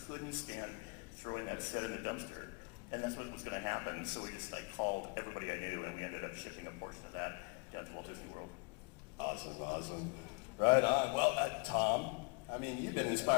couldn't stand throwing that set in the dumpster. And that's what was going to happen, so we just called everybody I knew, and we ended up shipping a portion of that down to Walt Disney World. Awesome. Right on. Well, Tom, I mean, you've been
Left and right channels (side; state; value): right; quieter; 33.3 dB